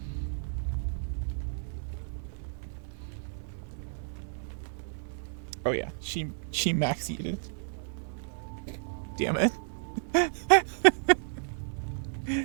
Oh yeah, she max eated. Damn it.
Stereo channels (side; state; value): left; silent; 57 dB below the other